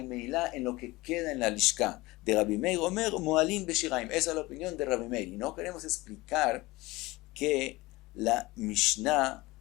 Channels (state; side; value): quieter; right; 20.8 dB